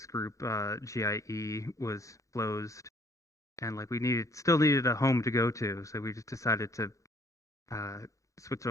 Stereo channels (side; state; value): right; late; 0.15 ms